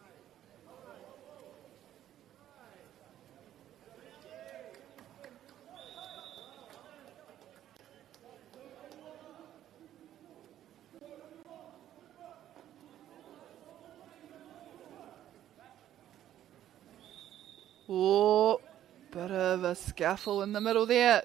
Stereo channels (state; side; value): quieter; left; 11.8 dB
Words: Oh, bit of a scuffle in the middle there.